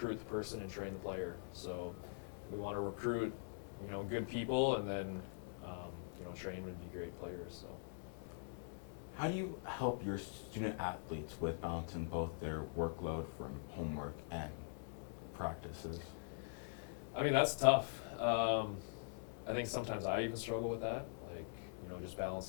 the person and train the player. So we want to recruit good people, and then train would be great players. So. How do you help your student athletes with balancing both their workload from homework and practices? I mean, that's tough. I think sometimes I even struggle with that, like, just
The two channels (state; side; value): silent; right; digital silence